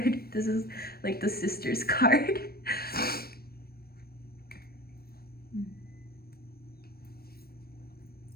This is like the sister's card.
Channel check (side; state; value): right; late; 0.44 ms